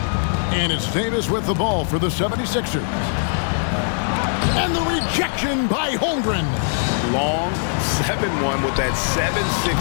And it's Davis with the ball for the 76ers. And the rejection by Holmgren. Long 7-1 with that 7'6"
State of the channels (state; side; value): silent; right; digital silence